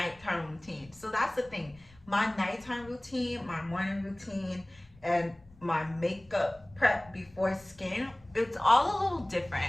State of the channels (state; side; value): noise; left; rumble, 26 dB below the sound